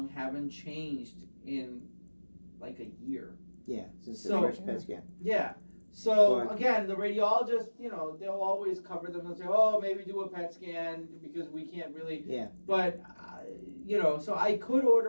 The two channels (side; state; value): both; inverted; correlation -1.00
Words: haven't changed in like a year. Yeah, since the first PET scan. Yeah. So again, the radiologist, they'll always cover them and say, "Oh, maybe do a PET scan because we can't really." Yeah. But so I could